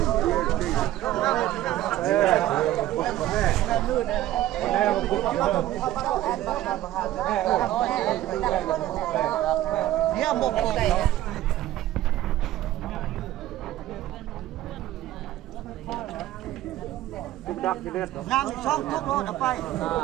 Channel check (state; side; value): quieter; left; 14.1 dB